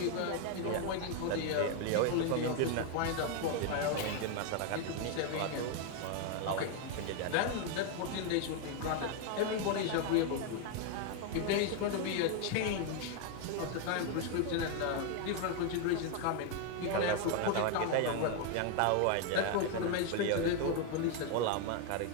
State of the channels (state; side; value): different; both; correlation 0.01